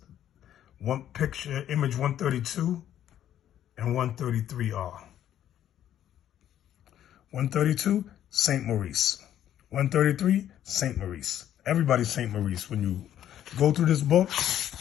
image 132 and 133 are. 132, St. Maurice. 133, St. Maurice. Everybody's St. Maurice. When you go through this book,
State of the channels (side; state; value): right; quieter; 11.1 dB